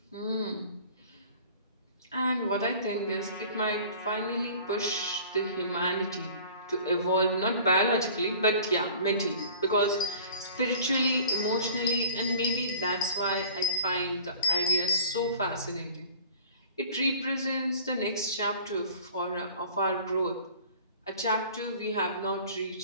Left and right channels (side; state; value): both; inverted; correlation -0.46